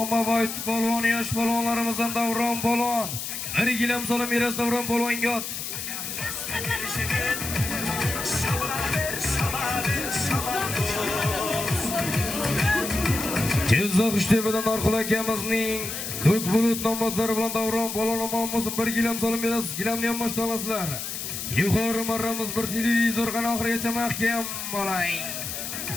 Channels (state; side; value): noise; left; hiss, 6 dB below the sound